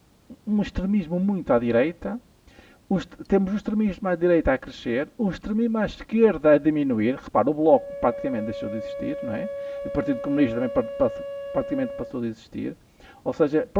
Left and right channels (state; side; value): identical; both; correlation 1.00